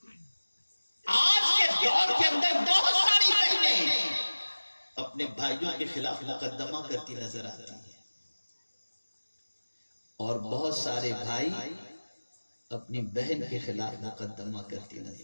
آج کے دور کے اندر بہت ساری بہنیں اپنے بھائیوں کے خلاف مقدمہ کرتی نظر آتی ہیں، اور بہت سارے بھائی اپنی بہن کے خلاف مقدمہ کرتی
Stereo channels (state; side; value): inverted; both; correlation -1.00